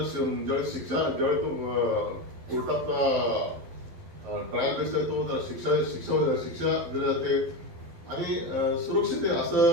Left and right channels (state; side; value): late; left; 12 ms